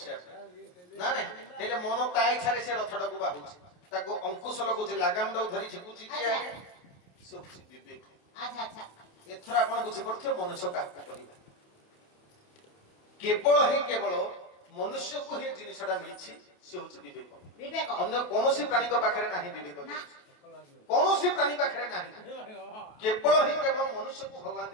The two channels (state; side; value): late; right; 28 ms